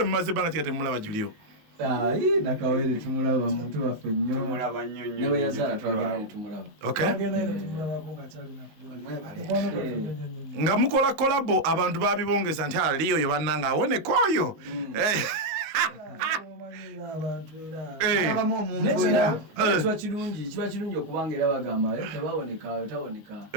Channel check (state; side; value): late; left; 19 ms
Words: mumaze banga ti temulaba Julio nakawere tumulaba muntu baffe nnyo mulaba nnyo nnyo ne yazala twagala tumulaba nga mukola kolabo abantu babibongeza nti aliyo yo bannanga awone koyo kiba kirungi okubanga era bagamba tebawoneka tawoneka